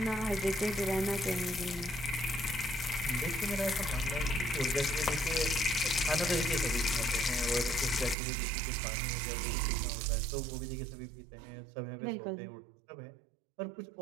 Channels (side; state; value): left; drops out; at 8.2 s